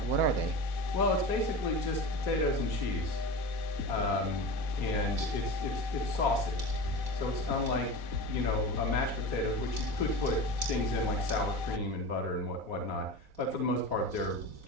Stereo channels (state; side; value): late; left; 4.1 ms